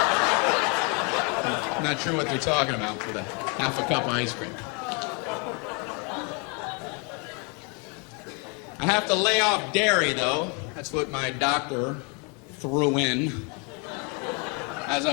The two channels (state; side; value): quieter; right; 34.0 dB